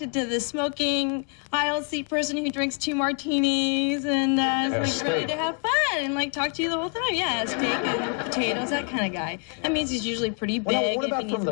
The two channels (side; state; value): right; quieter; 38.1 dB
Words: to the smoking aisle seat person who drinks 2 martinis and is ready to have fun and talk to you the whole time. Yeah, steak and potatoes, that kind of guy. That means he's usually pretty big. What about from